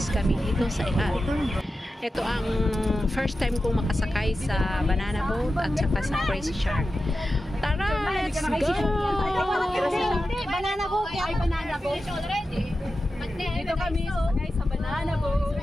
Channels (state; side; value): normal; both; correlation 0.92